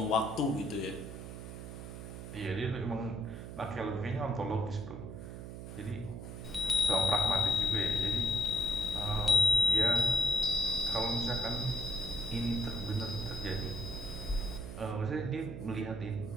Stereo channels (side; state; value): right; noise; hum, 10 dB below the sound